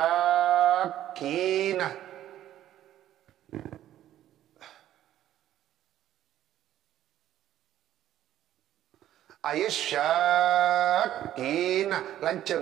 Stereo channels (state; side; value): quieter; left; 12.3 dB